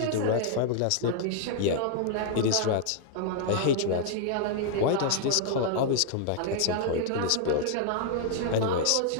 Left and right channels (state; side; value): different; both; correlation -0.01